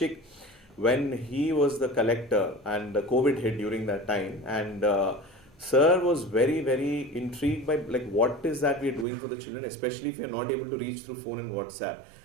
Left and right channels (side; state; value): left; drops out; at 9.1 s